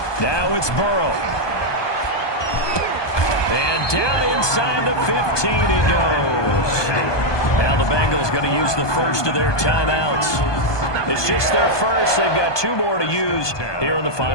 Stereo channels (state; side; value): late; right; 1.2 ms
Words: Now it's Burrow. And down inside the 15 he goes. Now the Bengals going to use the first of their timeouts. It's just their first. They've got 2 more to use here in the